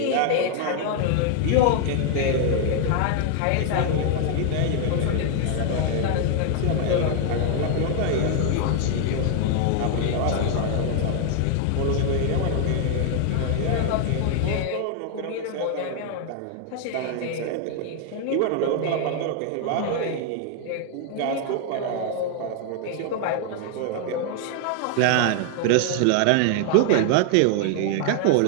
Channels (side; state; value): both; different; correlation 0.00